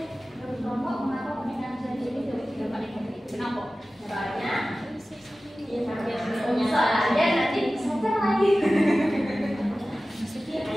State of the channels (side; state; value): both; normal; correlation 0.96